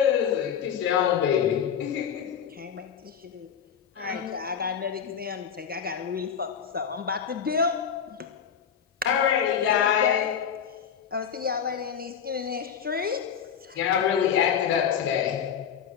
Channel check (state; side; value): quieter; right; 8.0 dB